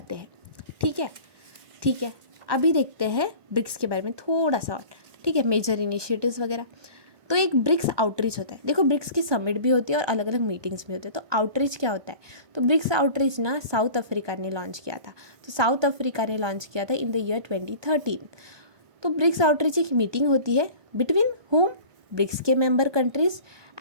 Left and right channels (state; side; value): late; left; 1.2 ms